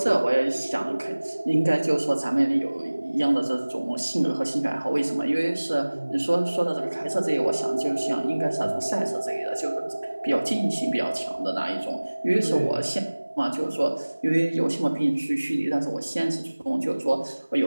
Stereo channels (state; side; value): inverted; both; correlation -1.00